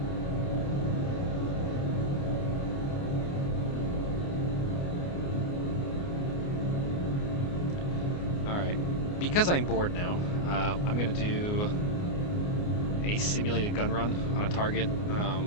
Alright. Because I'm bored now, I'm going to do a simulated gun run on a target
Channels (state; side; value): late; right; 29 ms